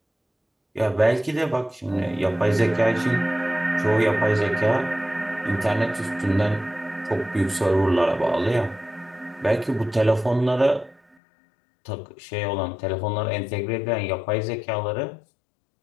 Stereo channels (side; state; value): right; drops out; at 11.2 s